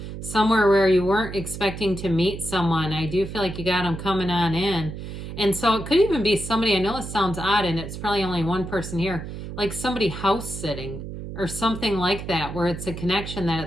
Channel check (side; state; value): right; noise; hum, 9 dB below the sound